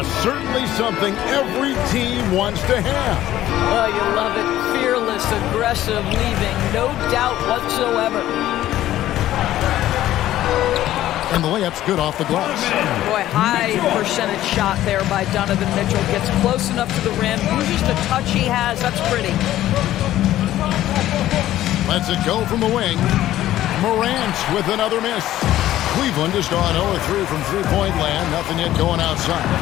Certainly something every team wants to have. Oh, you love it. Fearless, aggressive, leaving no doubt whatsoever. And the layup's good off the glass. Boy, high percentage shot there by Donovan Mitchell. Gets close enough to the rim, uses the touch he has. That's pretty. Lets it go from the wing. Morant with another miss. Cleveland has gone 0-3 from three-point land. Nothing yet going outside.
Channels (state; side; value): quieter; right; 13.7 dB